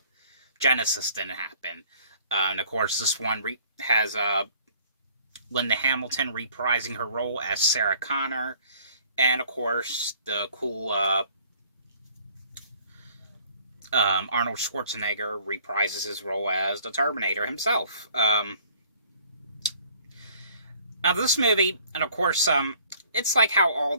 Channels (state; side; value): inverted; both; correlation -0.57